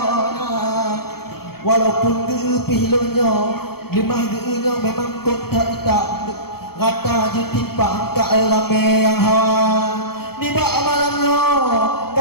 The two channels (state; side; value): late; right; 0.95 ms